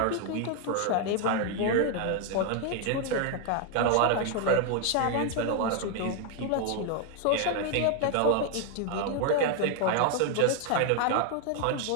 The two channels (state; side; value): different; both; correlation 0.01